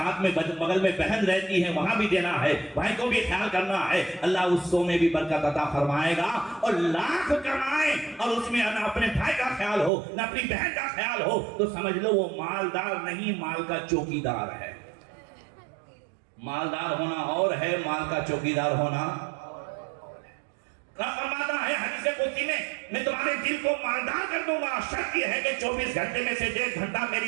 میں بغل میں بہن رہتی ہے وہاں بھی دینا ہے، بھائی کو بھی خیال کرنا ہے، اللہ اس 100 میں بھی برکت عطا فرمائے گا۔ اور لاکھ کمائیں اور اس میں نہ اپنے بھائی کا خیال ہو نہ اپنی بہن کا خیال ہو، تو سمجھ لو وہ مالدار نہیں، مال کا چوکیدار ہے۔ مالدار ہونا اور ہے، مال کا چوکیدار ہونا۔ فرماتا ہے حدیث قدسی میں تمہارے دل کو مالدار کر دوں گا، شرط یہ ہے کہ 24 گھنٹے میں سے 1.5 گھنٹہ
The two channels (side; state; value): left; drops out; at 9.9 s